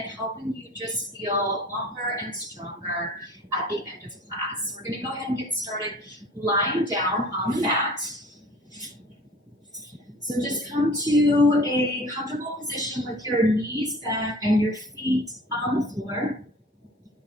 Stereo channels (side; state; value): both; normal; correlation 0.45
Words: helping you just feel longer and stronger at the end of class. So we're going to go ahead and get started lying down on the mat. So just come to a comfortable position with your knees back and your feet on the floor.